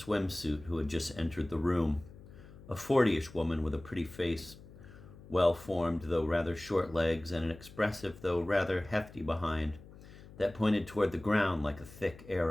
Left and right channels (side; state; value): left; noise; hum, 19 dB below the sound